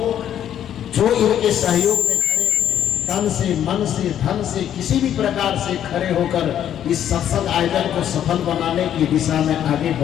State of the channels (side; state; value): right; quieter; 10.3 dB